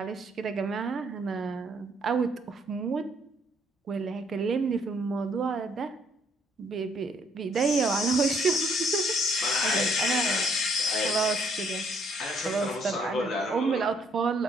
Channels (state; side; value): normal; both; correlation 0.67